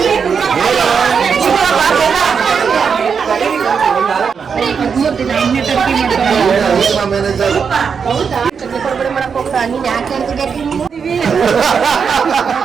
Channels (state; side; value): quieter; left; 6.2 dB